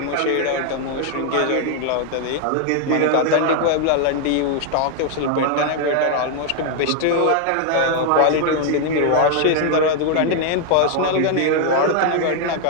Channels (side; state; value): both; different; correlation 0.00